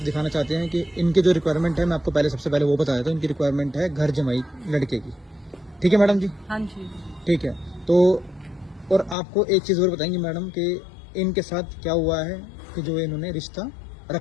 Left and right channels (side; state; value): right; drops out; at 9.2 s